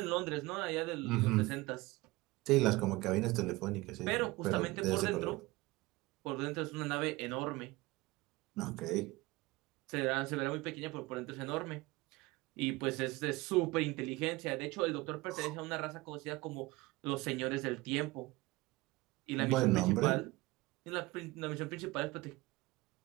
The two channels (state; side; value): quieter; left; 21.2 dB